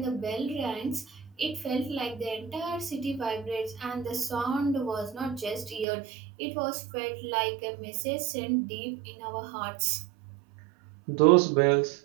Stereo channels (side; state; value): left; drops out; at 5.9 s